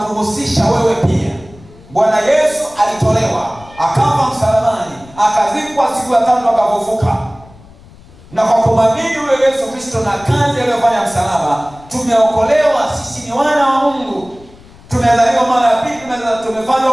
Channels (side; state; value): left; noise; rumble, 23 dB below the sound